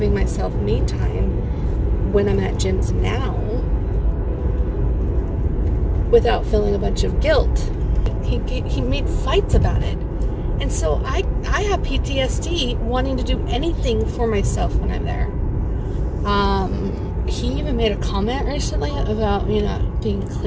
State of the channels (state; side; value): identical; both; correlation 1.00